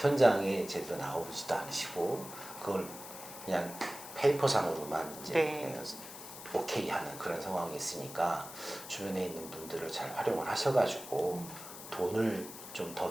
제대로 나오지도 않으시고 그걸 그냥 페이퍼상으로만 이제 네. 오케이 하는 그런 상황이 있으니까 주변에 있는 분들을 잘 활용을 하셔가지고 돈을 좀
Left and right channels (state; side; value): noise; left; hiss, 13 dB below the sound